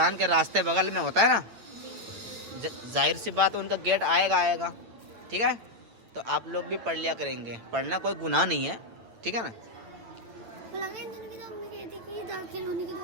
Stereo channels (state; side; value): late; left; 8.7 ms